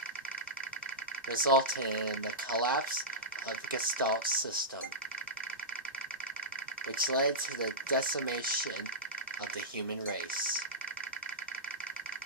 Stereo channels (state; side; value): normal; both; correlation -0.15